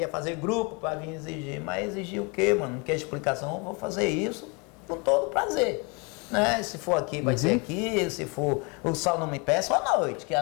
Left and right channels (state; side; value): quieter; right; 31.3 dB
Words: fazer grupo para vir exigir, mas exigir o quê, mano? Não quer explicação? Eu vou fazer isso com todo prazer. Né? Se for aqui, vai ser aqui. Se for o sol não me peça, à noite, que